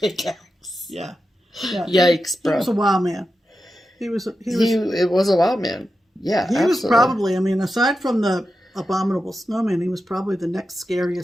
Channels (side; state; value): both; normal; correlation 0.90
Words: Yeah. Yeah. Yikes, bro. He was a wild man. It was a wild man. Yeah, he was probably, I mean, aside from the Abominable Snowman, he was probably the next